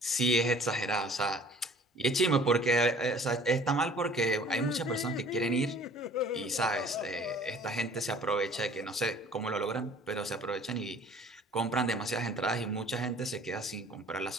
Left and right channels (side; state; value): both; normal; correlation 0.51